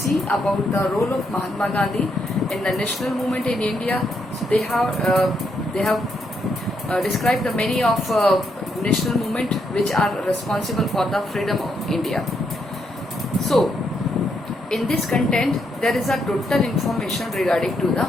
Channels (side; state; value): both; normal; correlation 0.78